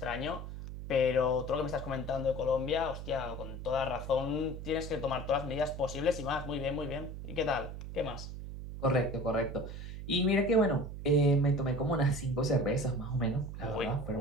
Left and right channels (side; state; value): right; noise; hum, 9 dB below the sound